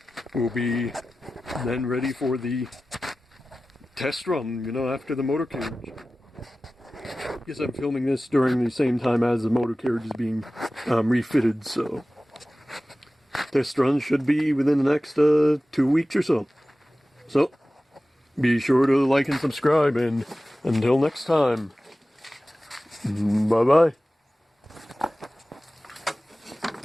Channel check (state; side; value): normal; both; correlation 0.96